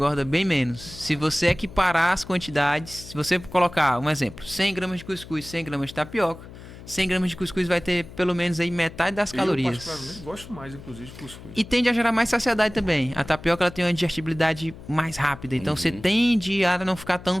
bem menos. Se você equiparar as quantidades, se você colocar, um exemplo, 100 gramas de cuscuz, 100 gramas de tapioca, 100 gramas de cuscuz vai ter pelo menos aí metade das calorias. Eu particularmente gosto mais, inclusive, de cuscuz. E tende a gerar mais saciedade também. A tapioca ela tem uma digestibilidade mais rápida. Então você tende a não ficar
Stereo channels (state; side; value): noise; left; hum, 16 dB below the sound